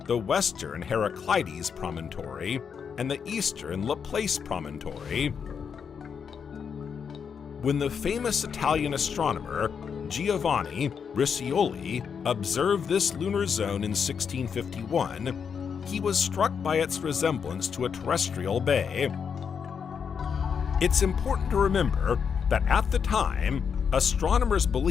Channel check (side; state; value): right; quieter; 6.7 dB